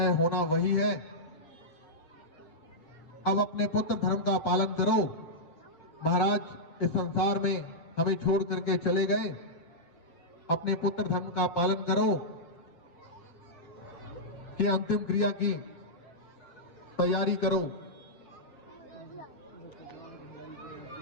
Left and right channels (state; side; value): late; right; 7.3 ms